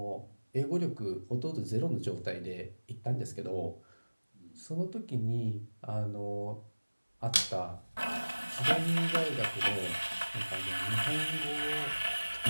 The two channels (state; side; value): inverted; both; correlation -1.00